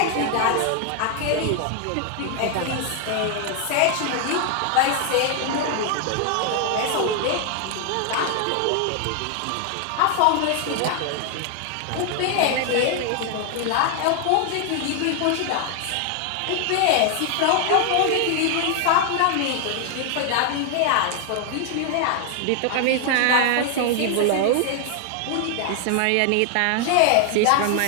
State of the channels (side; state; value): both; different; correlation 0.00